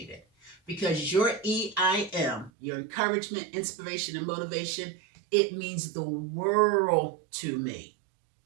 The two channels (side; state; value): left; drops out; at 2.5 s